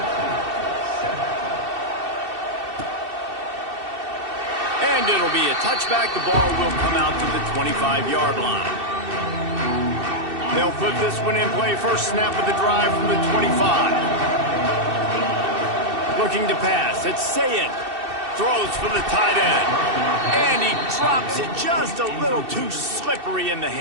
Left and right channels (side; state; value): left; late; 2.7 ms